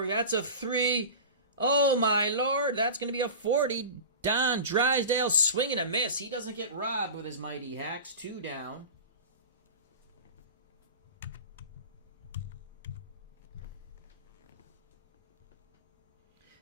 That's a 3. Oh, my Lord. That's going to be a 40. Don Drysdale swinging a miss. He doesn't get robbed with his mighty hacks. 2 down.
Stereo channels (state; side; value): inverted; both; correlation -0.31